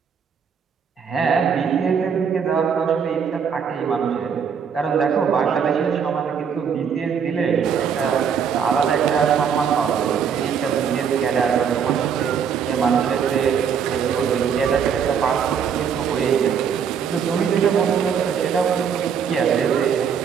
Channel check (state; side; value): quieter; left; 7.2 dB